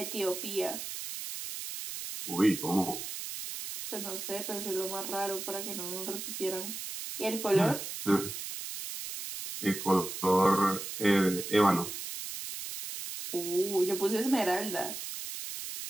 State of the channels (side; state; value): right; noise; hiss, 7 dB below the sound